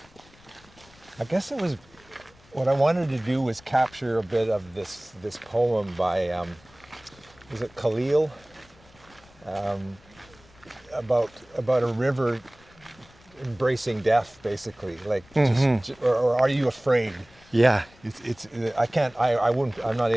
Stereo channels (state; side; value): noise; left; rumble, 27 dB below the sound